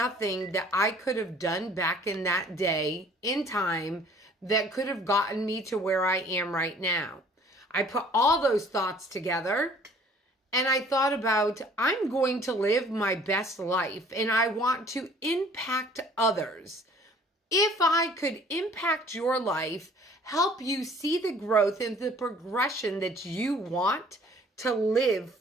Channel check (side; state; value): both; normal; correlation 0.54